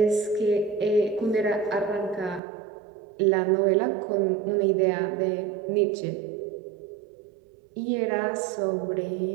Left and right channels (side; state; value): left; drops out; at 2.4 s